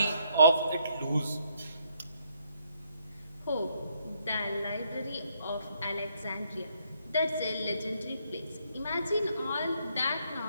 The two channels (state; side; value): inverted; both; correlation -0.71